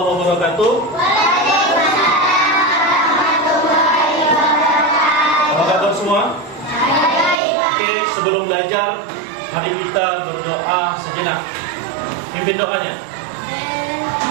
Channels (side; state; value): left; drops out; at 7.4 s